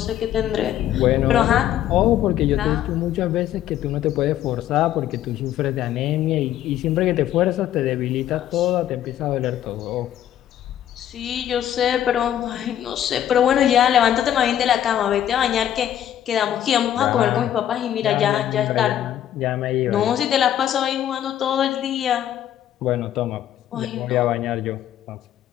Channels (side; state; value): right; quieter; 11.2 dB